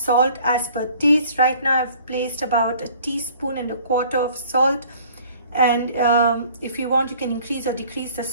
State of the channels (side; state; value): both; inverted; correlation -0.53